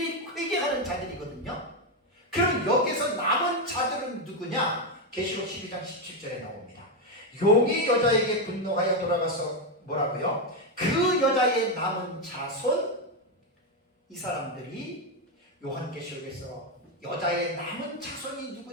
회개하는 자들이거든요. 그럼 여기서 남은 자들은 누구냐? 계시록 12장 17절에 나옵니다. 용이 여자에게 분노하여 돌아가서 뭐라고요? 그 여자의 남은 자손, 이 사람들이 요한계시록에서 여자의 남은 자손이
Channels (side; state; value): both; normal; correlation 0.06